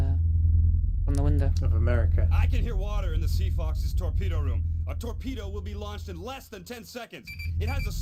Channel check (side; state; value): both; identical; correlation 1.00